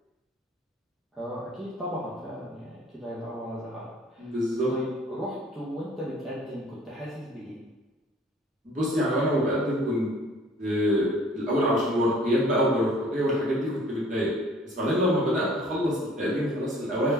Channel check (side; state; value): both; normal; correlation 0.53